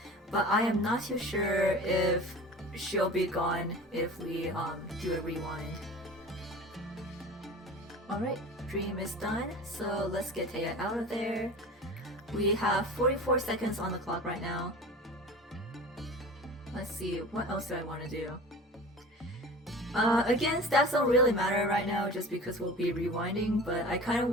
but I am not too sure if she'll be gone if we do a rewind. Alright, Dream is done, so let's get Taya out of there. We have 44 seconds on the clock right now. Let's see, what else do I want to do? Again, stats don't really matter right now just because we'll be rewinding, but I kind of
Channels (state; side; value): normal; both; correlation 0.37